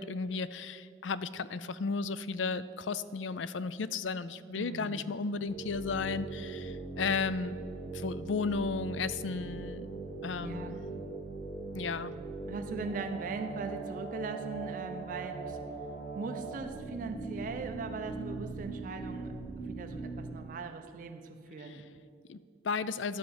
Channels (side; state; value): both; normal; correlation 0.28